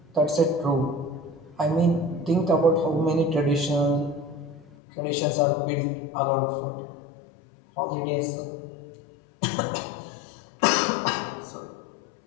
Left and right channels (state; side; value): drops out; right; at 4.7 s